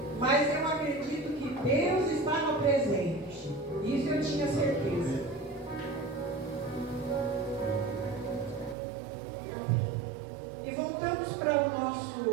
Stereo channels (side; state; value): left; drops out; at 8.8 s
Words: Mas eu acredito que Deus estava presente. Isso eu tinha certeza. E voltamos para o